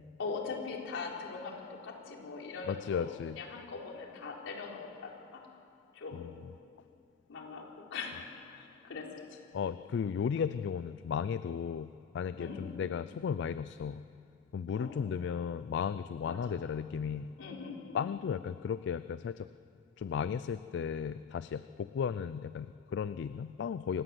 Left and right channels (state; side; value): quieter; right; 6.4 dB